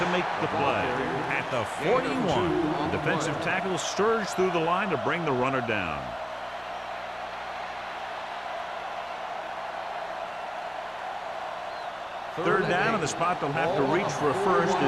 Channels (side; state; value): both; identical; correlation 1.00